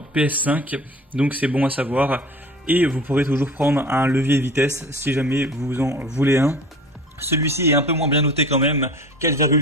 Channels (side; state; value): both; normal; correlation 0.41